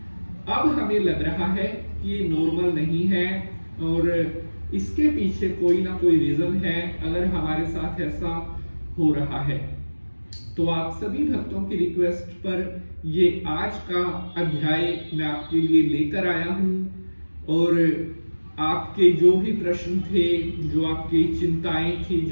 अब हमें लग रहा है कि ये नॉर्मल नहीं है और इसके पीछे कोई ना कोई रीजन है अगर हमारे साथ ऐसा हो रहा है। तो आप सभी भक्तों की रिक्वेस्ट पर ये आज का अध्याय मैं आपके लिए लेकर आया हूं और आपके जो भी प्रश्न थे, जो आपकी चिंताएं थी,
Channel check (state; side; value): inverted; both; correlation -1.00